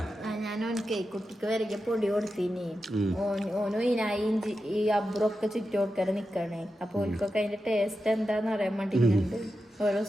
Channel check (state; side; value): normal; both; correlation 0.90